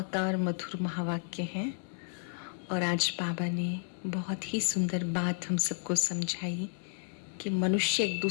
मधुर महावाक्य हैं और आज बाबा ने बहुत ही सुंदर बात हम सबको समझाई कि मनुष्य एक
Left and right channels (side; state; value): right; silent; digital silence